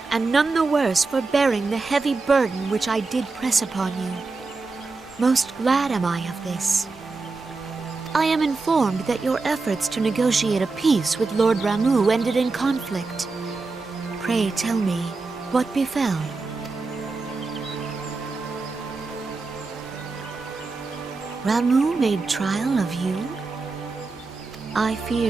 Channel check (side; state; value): left; quieter; 3.9 dB